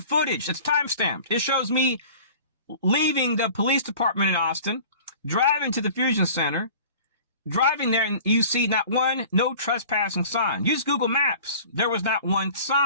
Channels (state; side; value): inverted; both; correlation -0.44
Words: footage. It's timestamped. It shows me leaving the police department in Austin, driving to the Fusion Center, driving there, and you see not one no trespassing sign. Use Google Maps. There was not one